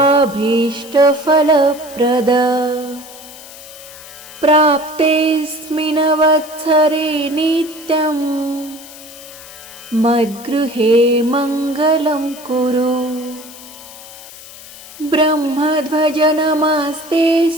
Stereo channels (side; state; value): left; noise; hiss, 17 dB below the sound